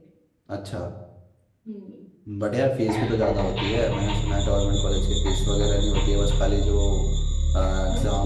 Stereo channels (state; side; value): identical; both; correlation 1.00